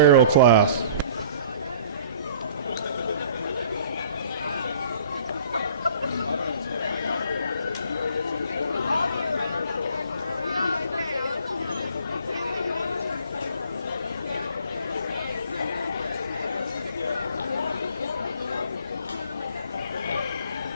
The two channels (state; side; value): inverted; both; correlation -0.51